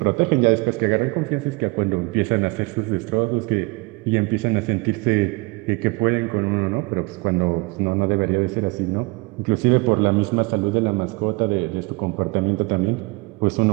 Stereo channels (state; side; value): quieter; left; 25.7 dB